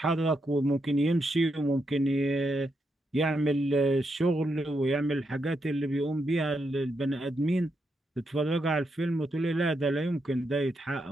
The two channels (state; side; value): normal; both; correlation 0.82